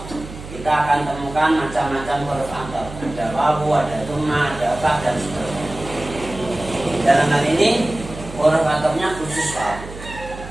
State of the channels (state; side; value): noise; right; hum, 13 dB below the sound